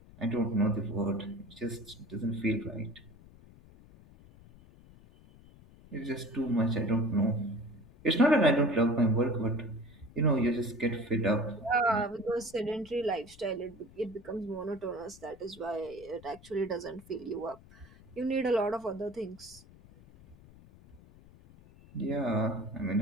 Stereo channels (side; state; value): left; noise; rumble, 22 dB below the sound